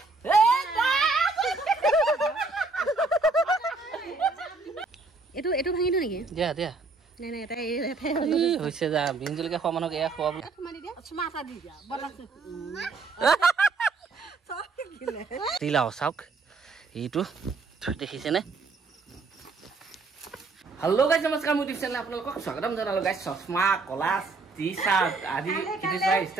Itu ভাঙি দিও নেকি? দিয়া দিয়া। নাই নাই এটা হৈছে যা বিঞ্জলকে খোৱা মানুহক এয়া খোৱা বুলি। তোমানি দিয়া। চুমাটা দি দিয়া। বনাছে। সব গিলে। তিলাও চাওক। এইটো দেখিছে নে? হেল্ল' গাইস নমস্কাৰ মোৰ ইউটিউব চেনেল আপোনালোকক স্বাগতম জনালো গাইস চশমা কলাস টি-শাৰ্ট আদি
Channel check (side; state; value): left; quieter; 3.9 dB